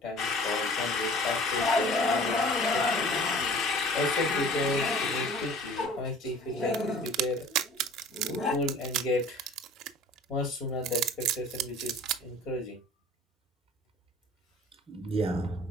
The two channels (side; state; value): both; normal; correlation 0.47